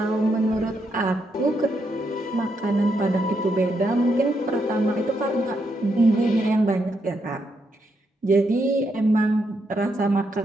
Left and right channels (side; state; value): both; normal; correlation 0.79